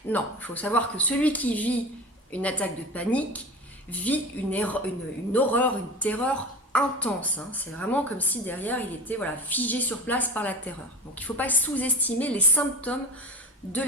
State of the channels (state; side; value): normal; both; correlation 0.32